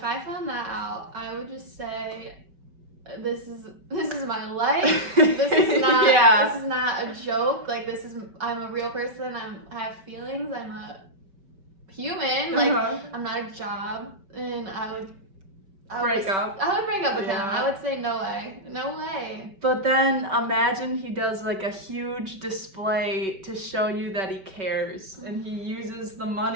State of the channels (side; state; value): left; late; 5.2 ms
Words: I found that out, I would just say, this is my life. This is not this is not a joke. Like, I'm a real person. I have feelings. I'm a human. Like, I'm not a job. And I would break up with him. I would say no way. But then imagine he does like a huge display to show you that he cares, and he uses the